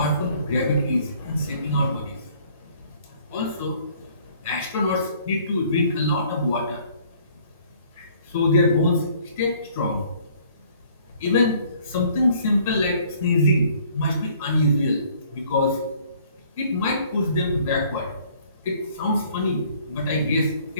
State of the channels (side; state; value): both; inverted; correlation -0.59